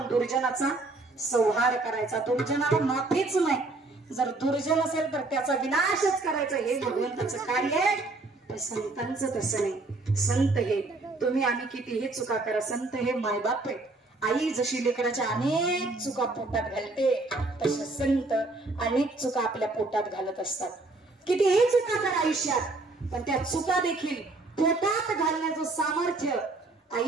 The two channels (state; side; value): quieter; left; 3.2 dB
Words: दुर्जनाचा संहार करायचा. दुर्जनाला माफीच नाही. जर दुर्जन असेल तर त्याचा विनाशच करायचा, हे भगवंताचं कार्य आहे. पण संतांचं तसं नाही. संत हे तुम्ही आम्ही कितीही चुका करा, संत हे मायबाप आहेत. आई जशी लेकराच्या अनेक चुका पोटात घालते, तसे संत अनेक चुका आपल्या पोटात घालत असतात. कितीही चुका करा आयुष्यात, पण त्या चुका देखील पोटात घालण्याचं सामर्थ्य